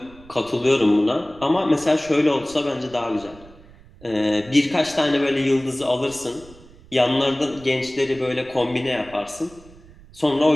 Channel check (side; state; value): right; noise; rumble, 23 dB below the sound